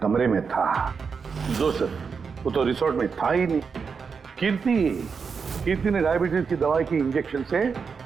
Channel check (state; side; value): quieter; left; 5.6 dB